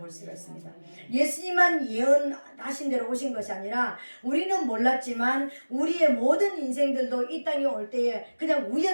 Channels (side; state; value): both; inverted; correlation -1.00